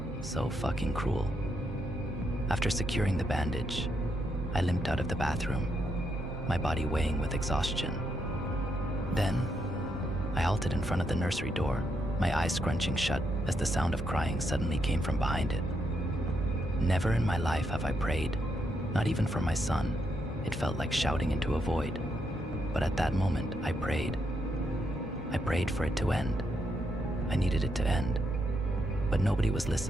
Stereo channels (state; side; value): normal; both; correlation 0.79